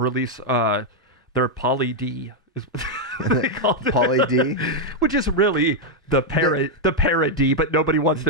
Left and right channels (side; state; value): both; normal; correlation 0.00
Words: their Poly D, is what they called it. Poly D? Which is really the parody, but nobody wants to